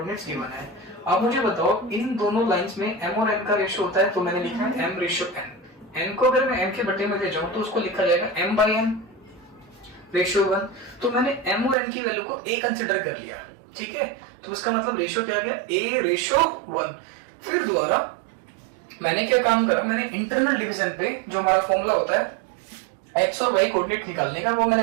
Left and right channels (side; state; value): left; drops out; at 11.8 s